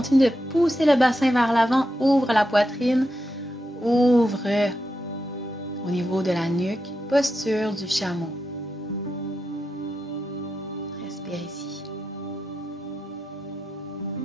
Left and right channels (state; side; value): normal; both; correlation 0.87